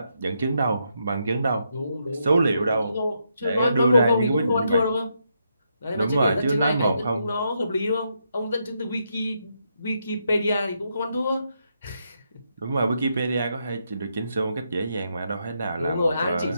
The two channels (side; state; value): both; inverted; correlation -0.80